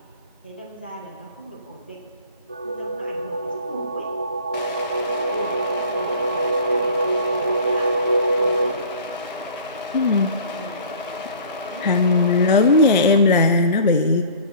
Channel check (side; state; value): both; inverted; correlation -0.45